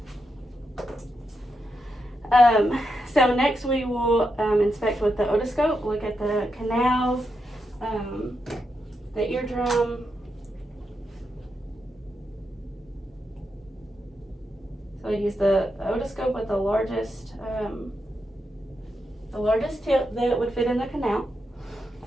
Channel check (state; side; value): normal; both; correlation 0.85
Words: So next we will inspect with the otoscope, look at the canals, the eardrum, so I use the otoscope with the largest tip that would fit in the canal.